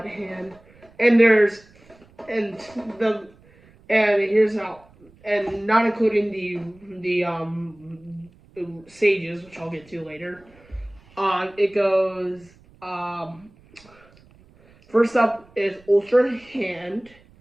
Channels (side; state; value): right; noise; rumble, 28 dB below the sound